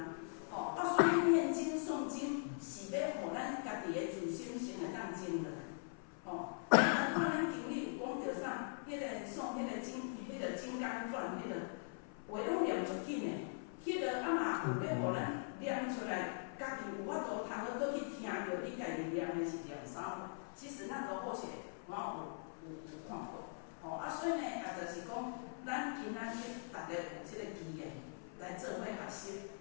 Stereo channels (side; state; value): right; silent; 50 dB below the other